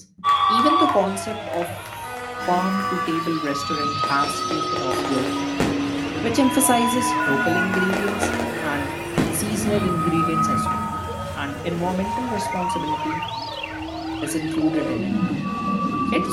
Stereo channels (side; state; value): both; identical; correlation 1.00